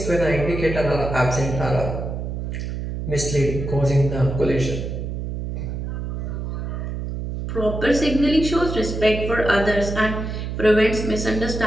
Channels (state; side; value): noise; right; hum, 5 dB below the sound